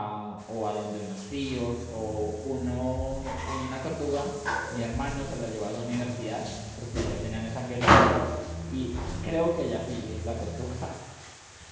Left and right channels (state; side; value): identical; both; correlation 1.00